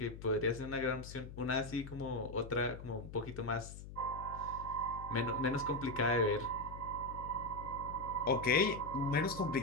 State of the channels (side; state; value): left; noise; hum, 12 dB below the sound